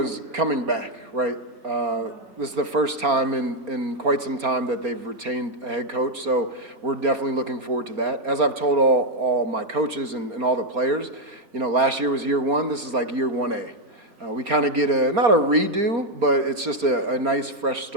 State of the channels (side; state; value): left; late; 4.3 ms